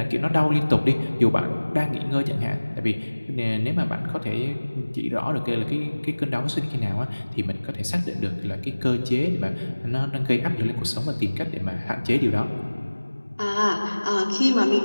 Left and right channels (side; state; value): both; inverted; correlation -1.00